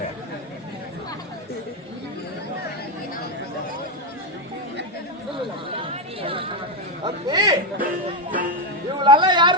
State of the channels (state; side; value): normal; both; correlation 0.06